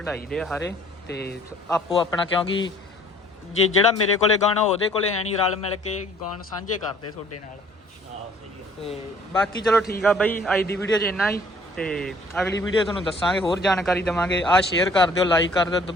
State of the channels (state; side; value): normal; both; correlation 0.56